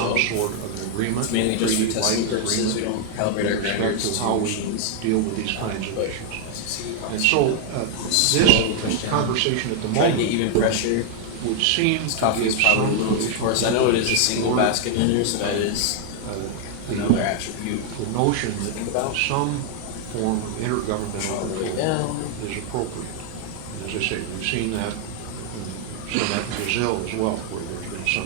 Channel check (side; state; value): both; different; correlation 0.00